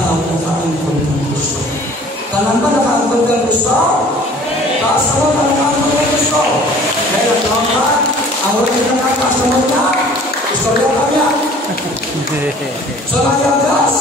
nakaangkol ng Kristo. Tanan ba nakaangkol ng Kristo? Taasa mo na nakaangkol ng Kristo. Kaya naglaman, ang wala kita nakakasa mo niya, istorya ka niya. Sa mayang gas,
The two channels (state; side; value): normal; both; correlation 0.50